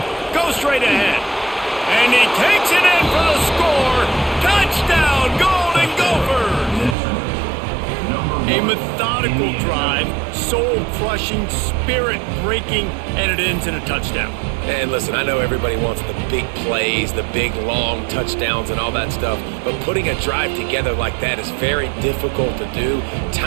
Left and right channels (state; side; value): drops out; left; at 7.0 s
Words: Go straight ahead. And he takes it in for the score. Touchdown, Golden Gophers! A methodical drive, soul-crushing, spirit-breaking, and it ends in a touchdown. And listen, I know everybody wants the big plays, the big, long touchdowns and all that stuff, but putting a drive together like that is very difficult to do